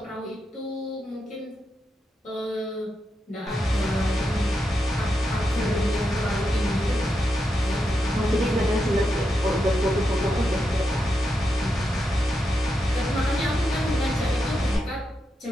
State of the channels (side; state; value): both; normal; correlation 0.85